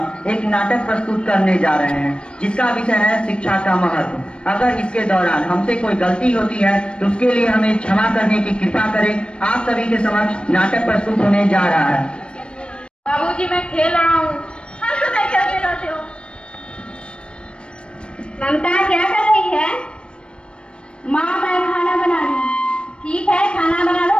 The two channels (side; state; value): right; late; 0.056 ms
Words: एक नाटक प्रस्तुत करने जा रहे हैं, जिसका विषय है शिक्षा का महत्व। अगर इसके दौरान हमसे कोई गलती होती है तो उसके लिए हमें क्षमा करने की कृपा करें। आप सभी के समक्ष नाटक प्रस्तुत होने जा रहा है। बाबूजी, मैं खेल रहा हूँ। हाँ, तो मैं क्या कहते हो? ममता क्या कर रही है? माँ, मैं खाना बना रही हूँ। ठीक है, खाना बना लो